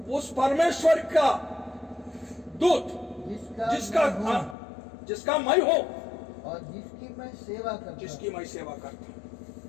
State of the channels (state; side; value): drops out; right; at 4.5 s